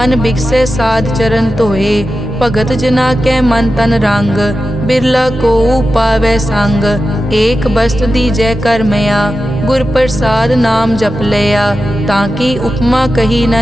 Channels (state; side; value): normal; both; correlation 0.92